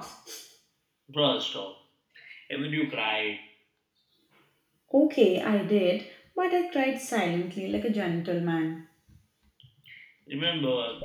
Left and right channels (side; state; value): both; identical; correlation 1.00